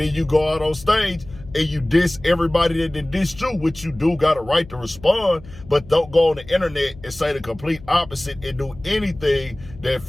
you go out on stage and you diss everybody that did diss you, which you do got a right to respond, but don't go on the internet and say the complete opposite and do anything that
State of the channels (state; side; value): noise; left; hum, 19 dB below the sound